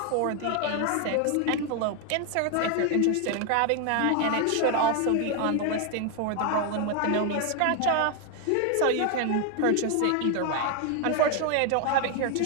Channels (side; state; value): both; different; correlation 0.01